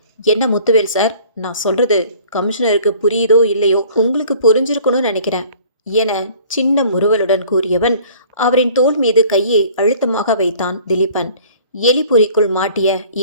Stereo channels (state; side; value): inverted; both; correlation -0.51